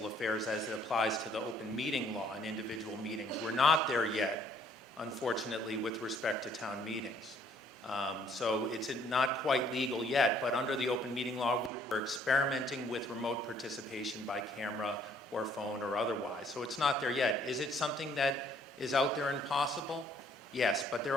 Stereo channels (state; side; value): normal; both; correlation 0.62